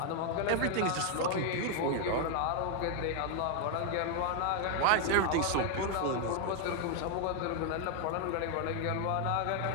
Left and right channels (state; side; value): different; both; correlation 0.00